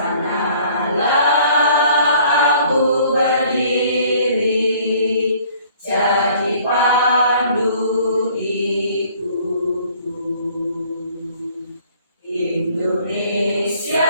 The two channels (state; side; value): inverted; both; correlation -0.56